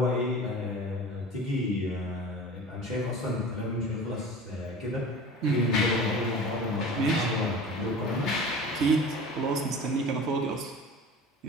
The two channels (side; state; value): both; normal; correlation 0.37